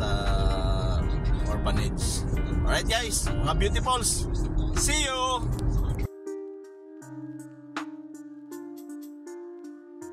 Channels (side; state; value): both; identical; correlation 1.00